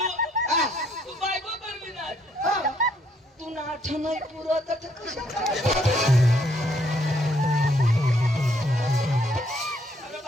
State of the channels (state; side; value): normal; both; correlation 0.69